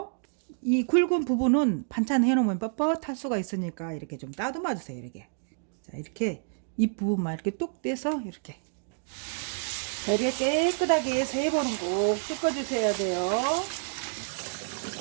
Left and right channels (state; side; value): silent; left; digital silence